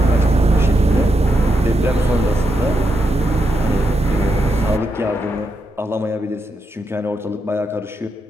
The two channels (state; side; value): normal; both; correlation 0.83